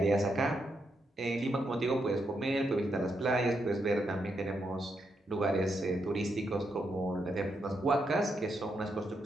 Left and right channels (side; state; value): both; normal; correlation 0.81